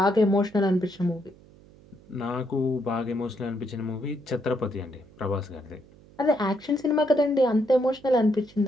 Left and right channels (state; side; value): noise; right; hum, 25 dB below the sound